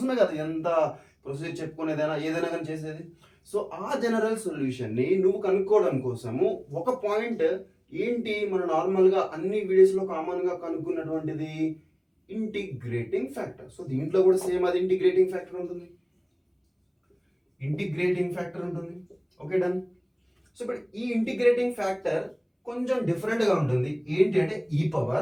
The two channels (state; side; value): identical; both; correlation 1.00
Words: కదా ఎంత ప్రొసీజర్ చెప్పుకునేదైనా ఏదైనా కానీ చేసేది. సో ఆ జనరల్ సొల్యూషన్ ని నువ్వు కనుక్కోవడం కోసము ఒక పాయింట్ ఏంటి, మన నార్మల్ గా అన్ని వీడియోస్ లో కామన్ గా కనుక్కున్నటువంటిది ఇంటిగ్రేటింగ్ ఫ్యాక్టర్. సో దీంట్లో కూడా సేమ్ అది ఇంటిగ్రేటింగ్ ఫ్యాక్టర్ ఉంటుంది. Okay done. సో ఇప్పుడు ఈ ఇంటిగ్రేటింగ్ ఫ్యాక్టర్ కొంచెం డిఫరెంట్ గా ఉంటుంది. ఏంటి అంటే ఈ